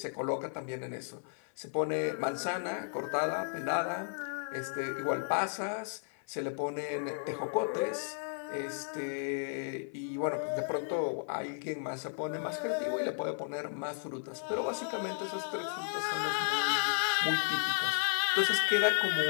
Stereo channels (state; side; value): silent; right; 55 dB below the other